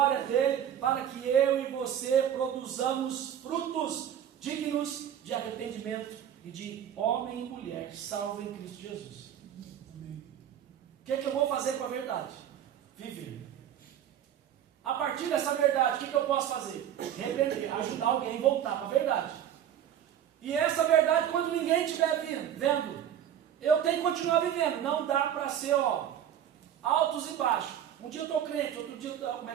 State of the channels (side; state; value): left; quieter; 10.0 dB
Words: dEle, para que eu e você produzamos frutos dignos de arrependimento e de homem e mulher salvo em Cristo Jesus. O que eu vou fazer com a verdade? Viver. A partir dessa verdade, o que eu posso fazer? Repreender, ajudar alguém a voltar para a verdade. E essa verdade, quando ninguém estiver vendo, eu tenho que continuar vivendo. Não dá para ser, altos e baixos. Um dia eu estou crente, outro dia, como é